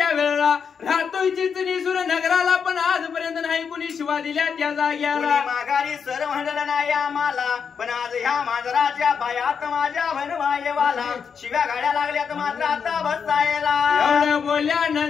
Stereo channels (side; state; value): right; quieter; 6.5 dB